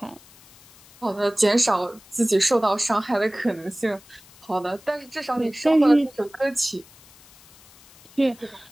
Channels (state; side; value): noise; left; hiss, 25 dB below the sound